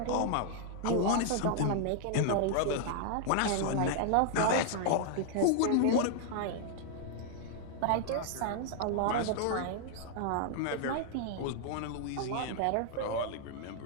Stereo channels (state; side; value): different; both; correlation -0.01